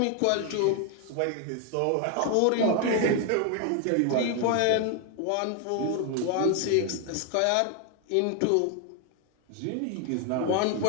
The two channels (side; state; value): both; different; correlation 0.01